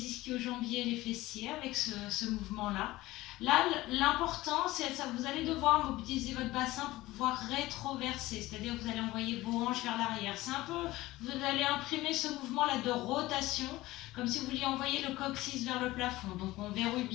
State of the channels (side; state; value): right; quieter; 18.1 dB